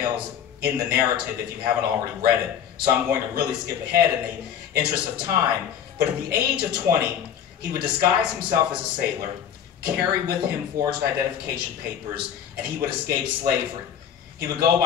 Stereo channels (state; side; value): quieter; right; 8.9 dB